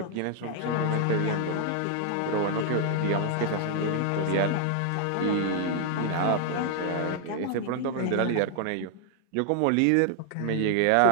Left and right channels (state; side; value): different; both; correlation 0.00